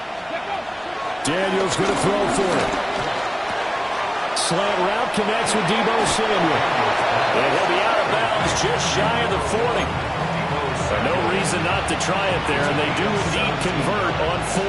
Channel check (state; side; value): identical; both; correlation 1.00